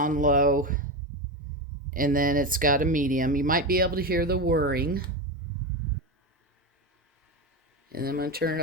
low. And then it's got a medium. You might be able to hear the whirring. And then I'm going to turn it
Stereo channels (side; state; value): both; normal; correlation 0.16